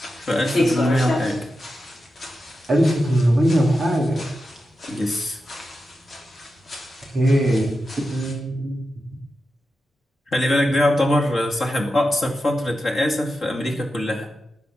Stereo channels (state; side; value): normal; both; correlation 0.90